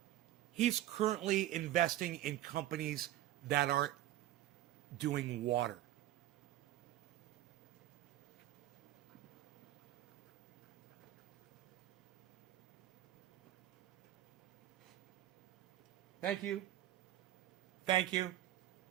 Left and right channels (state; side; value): quieter; left; 13.8 dB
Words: he's currently investing in companies that are doing water. Thank you. Thank you.